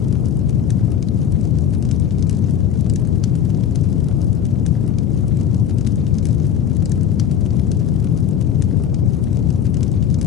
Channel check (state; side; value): quieter; right; 8.9 dB